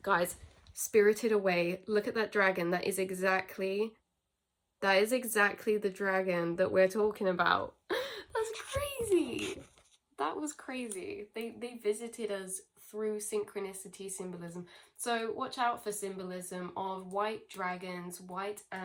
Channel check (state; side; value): identical; both; correlation 1.00